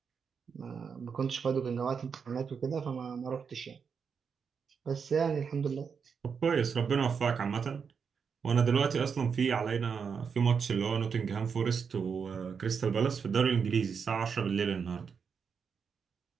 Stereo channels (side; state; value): left; quieter; 6.2 dB